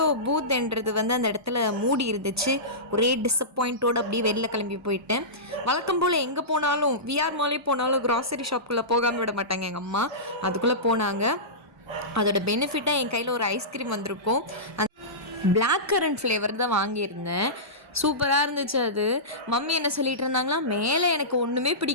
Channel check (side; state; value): both; normal; correlation -0.19